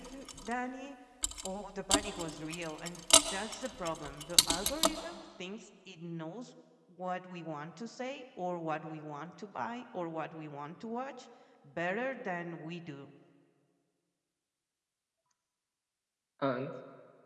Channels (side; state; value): both; identical; correlation 1.00